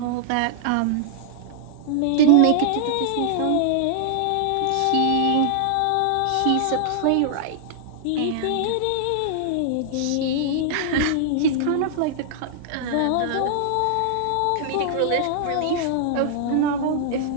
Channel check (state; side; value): different; both; correlation -0.01